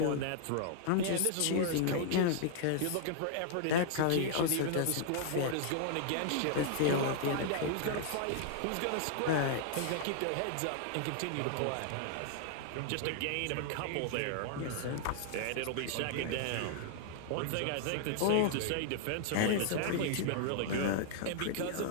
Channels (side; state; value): both; different; correlation -0.01